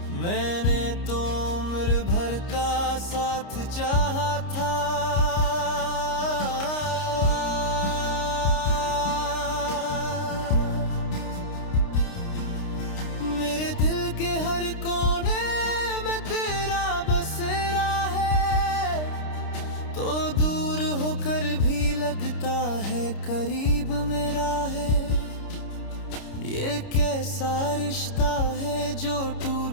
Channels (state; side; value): late; right; 29 ms